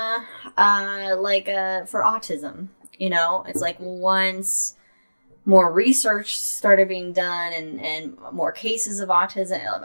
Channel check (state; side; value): inverted; both; correlation -1.00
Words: for autism, it's like once more research started being done and more cases of autism,